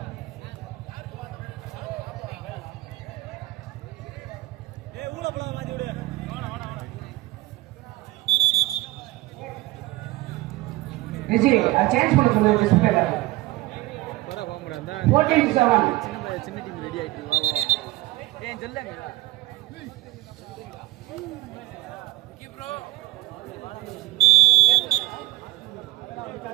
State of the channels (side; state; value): left; quieter; 18.9 dB